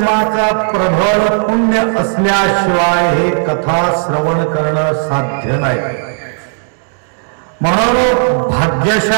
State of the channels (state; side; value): silent; left; 58 dB below the other